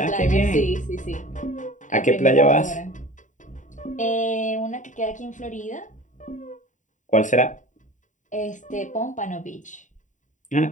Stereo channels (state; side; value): late; right; 0.36 ms